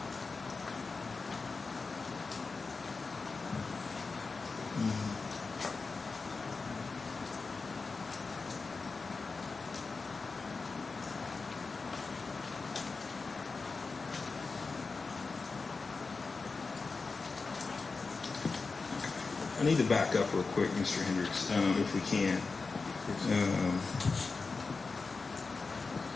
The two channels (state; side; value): quieter; right; 4.2 dB